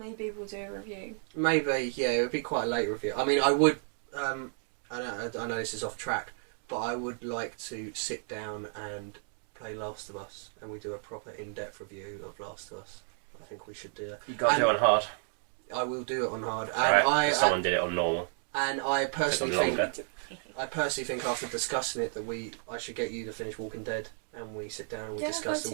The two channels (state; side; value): silent; left; 56 dB below the other